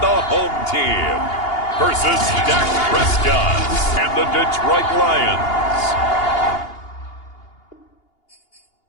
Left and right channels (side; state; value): right; late; 2.8 ms